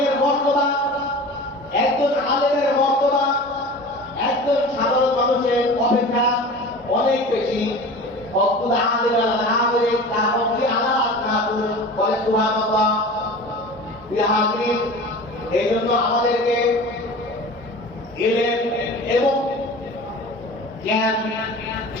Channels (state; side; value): normal; both; correlation 0.36